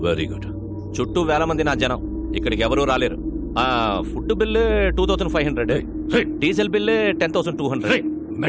Very good. చుట్టూ వేల మంది నా జనం. ఇక్కడికి ఎవరూ రాలేరు. Food bill 2500, diesel bill 10,200.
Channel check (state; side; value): identical; both; correlation 1.00